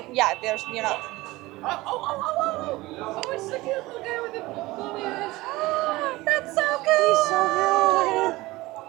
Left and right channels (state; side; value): quieter; left; 19.9 dB